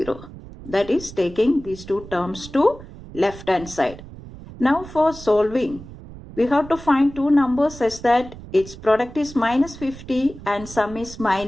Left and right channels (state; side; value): noise; right; rumble, 16 dB below the sound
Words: That is taking these two terms to left hand side. Now for solving, we have to find two numbers such that its product is minus 50 and sum is